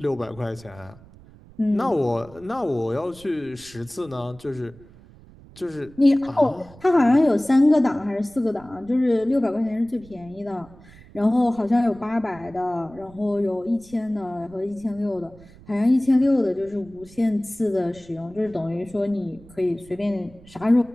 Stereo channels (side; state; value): right; noise; rumble, 23 dB below the sound